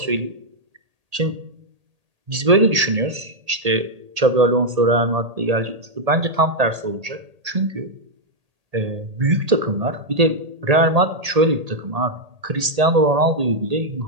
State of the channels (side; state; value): left; late; 1.8 ms